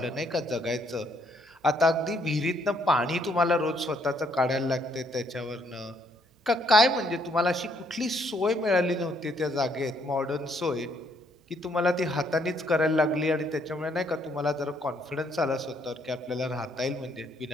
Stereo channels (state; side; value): normal; both; correlation 0.69